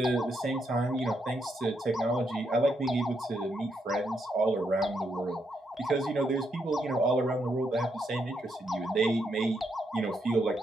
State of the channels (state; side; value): normal; both; correlation 0.79